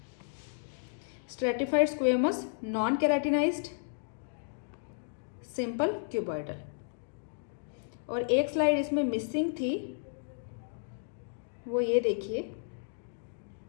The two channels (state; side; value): silent; right; digital silence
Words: stratified squamous non keratinized, simple cuboidal. और एक स्लाइड इसमें मिसिंग थी, वो ये देखिए,